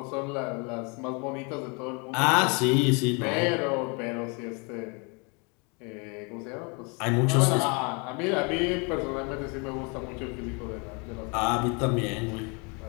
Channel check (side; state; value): right; quieter; 32.5 dB